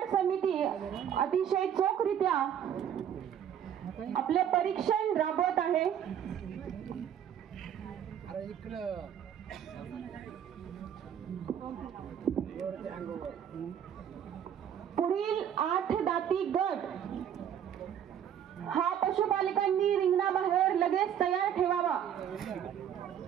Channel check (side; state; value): left; quieter; 9.3 dB